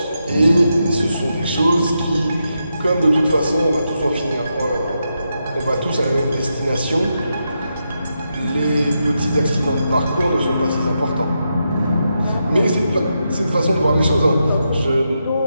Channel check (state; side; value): inverted; both; correlation -0.85